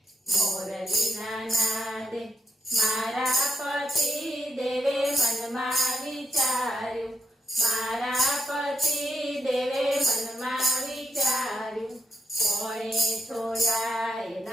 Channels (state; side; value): normal; both; correlation 0.82